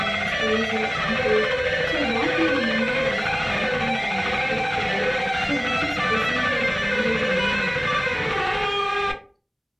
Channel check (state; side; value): identical; both; correlation 1.00